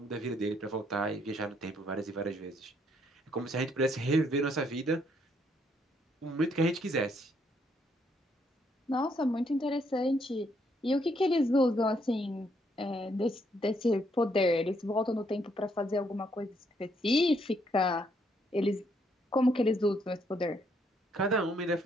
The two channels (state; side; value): normal; both; correlation 0.71